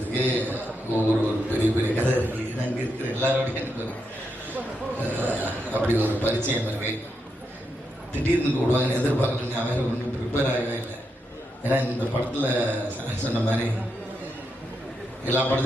ஒரு பெரிய பெரிய கதை இருக்குது. அங்கே இருக்கிற எல்லாரோடையும் எனக்கு அப்படி ஒரு பரிச்சயம் இருக்கு. திடீர்னு கூடுவாங்கன்னு எதிர்பார்க்கல. நான் வேறு ஒன்றும் ப்ரிப்பேர் ஆகவே இல்லை. ஏன்னா இந்த படத்தில் சொன்ன மாதிரி எல்லா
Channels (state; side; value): normal; both; correlation 0.83